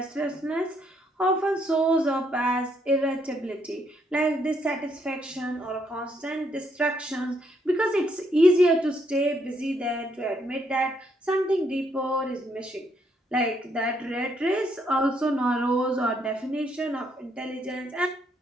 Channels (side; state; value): both; normal; correlation 0.73